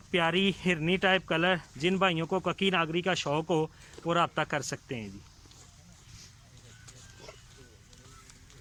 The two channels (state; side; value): identical; both; correlation 1.00